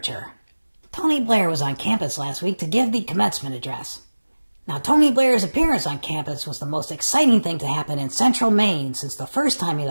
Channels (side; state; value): both; inverted; correlation -1.00